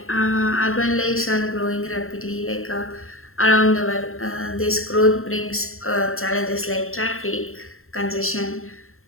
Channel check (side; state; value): right; late; 0.61 ms